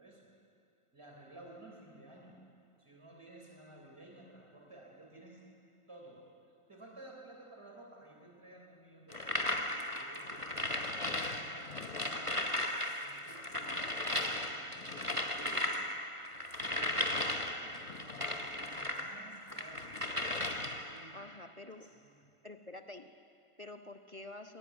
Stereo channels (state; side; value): late; left; 1.5 ms